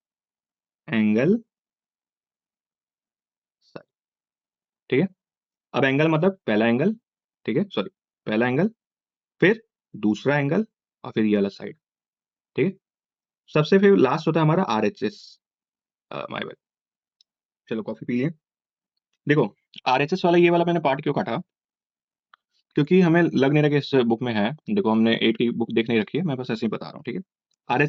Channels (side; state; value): both; identical; correlation 1.00